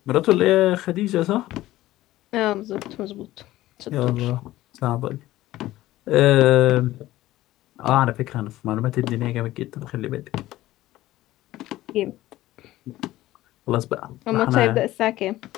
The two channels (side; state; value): right; quieter; 16.0 dB